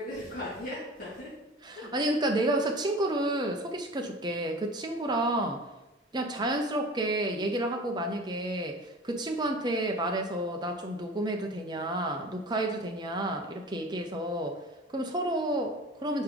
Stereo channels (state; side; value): normal; both; correlation 0.39